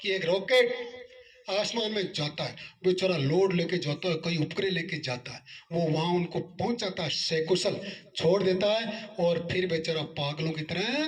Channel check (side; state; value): both; identical; correlation 1.00